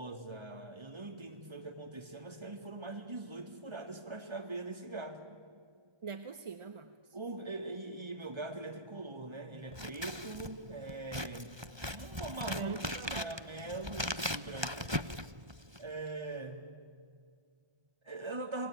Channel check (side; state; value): left; late; 1.2 ms